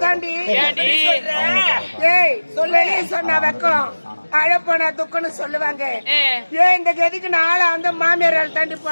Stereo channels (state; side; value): inverted; both; correlation -1.00